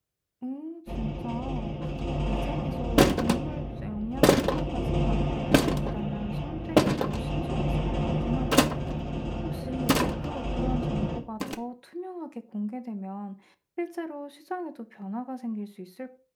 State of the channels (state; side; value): identical; both; correlation 1.00